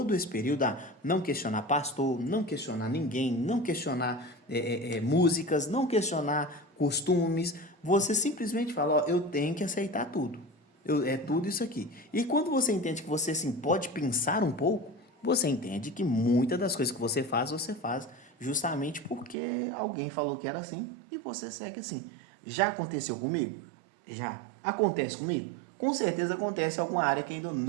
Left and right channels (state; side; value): drops out; left; at 19.4 s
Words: esse período a não questionar pastor, não questionar ninguém, não questionar músicas, não questionar costumes. Você simplesmente fala, ó, eu tenho que aceitar tudo. É tudo isso aqui. E quando você entende que você assim, pode pensar um pouco, você entende que muitas das coisas que você faz justamente porque alguém falou que era assim e você segue assim. Já aconteceu comigo? Já. Acontece comigo? Com certeza acontece em alguma área que ainda